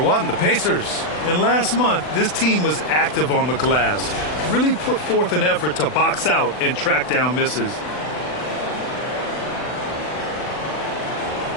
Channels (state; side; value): late; right; 39 ms